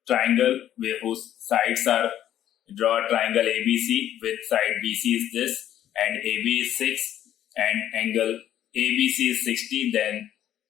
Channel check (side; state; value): right; quieter; 11.4 dB